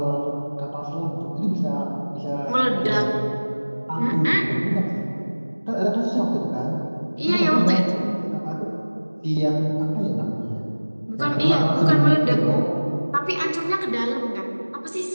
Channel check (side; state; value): both; inverted; correlation -1.00